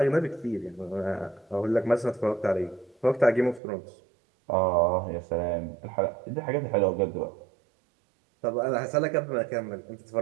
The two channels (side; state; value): left; drops out; at 3.6 s